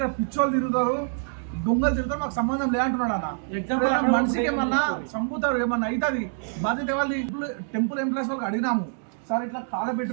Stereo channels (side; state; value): left; silent; digital silence